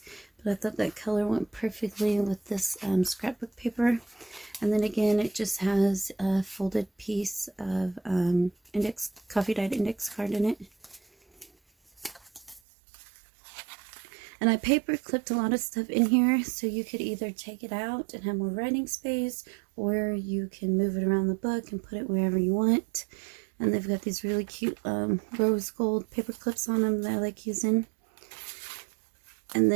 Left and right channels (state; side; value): drops out; left; at 12.6 s